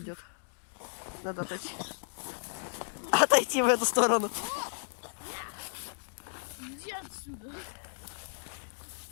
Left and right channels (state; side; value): silent; right; digital silence